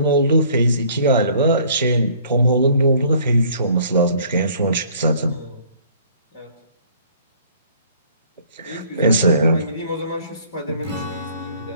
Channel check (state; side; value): inverted; both; correlation -0.56